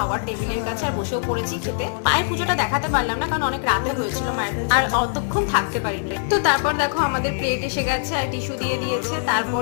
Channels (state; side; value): silent; right; digital silence